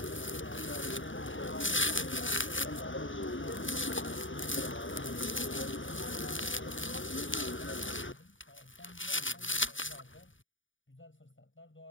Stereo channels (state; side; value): late; right; 0.57 ms